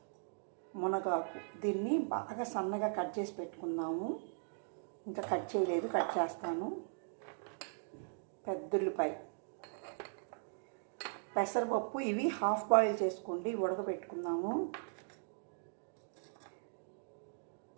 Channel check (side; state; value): left; silent; digital silence